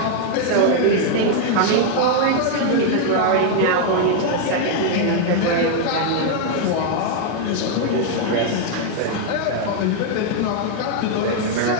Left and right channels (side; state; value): both; different; correlation 0.00